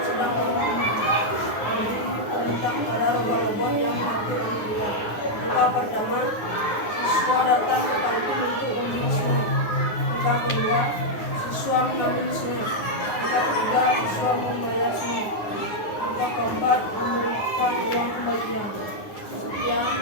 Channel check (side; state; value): right; late; 9.6 ms